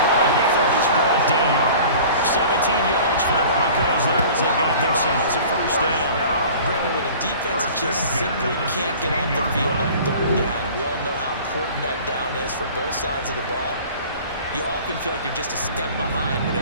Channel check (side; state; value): both; inverted; correlation -0.44